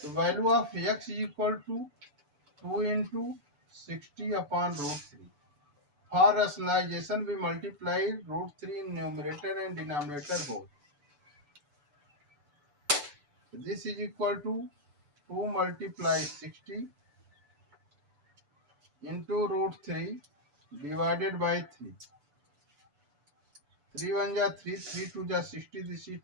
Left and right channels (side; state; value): left; late; 6.9 ms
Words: value of x is equal to 2 into 60 upon root 3. For rationalization, we multiply root 3 in numerator and denominator both. This is equal to 2 multiply 60 into root 3 divided by 3. 3 1 ja 3, 3 2 ja 60, this is